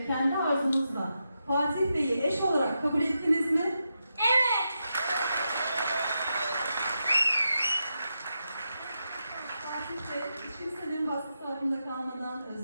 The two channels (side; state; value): both; inverted; correlation -0.86